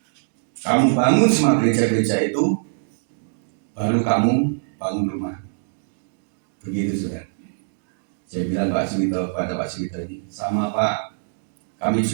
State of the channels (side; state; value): left; silent; digital silence